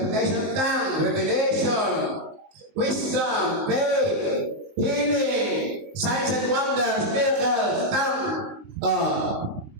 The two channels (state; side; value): late; left; 19 ms